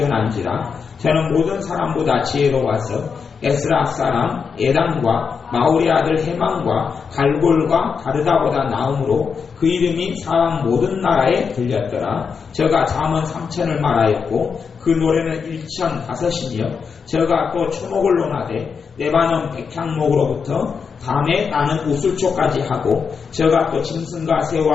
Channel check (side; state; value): right; quieter; 5.9 dB